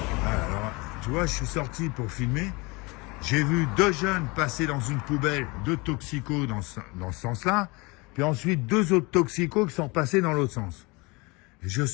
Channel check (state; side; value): quieter; right; 26.1 dB